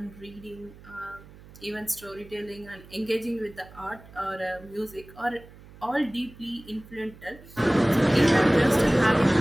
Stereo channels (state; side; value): noise; right; hum, 21 dB below the sound